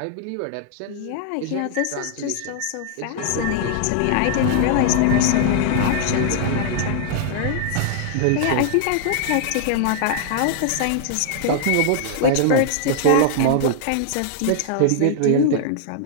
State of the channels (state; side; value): different; both; correlation -0.01